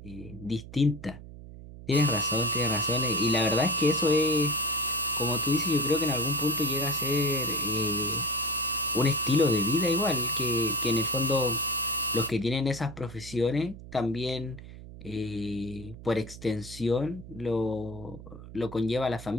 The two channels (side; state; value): right; noise; hum, 15 dB below the sound